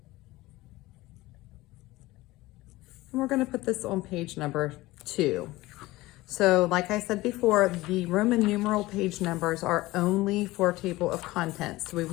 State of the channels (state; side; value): quieter; right; 19.0 dB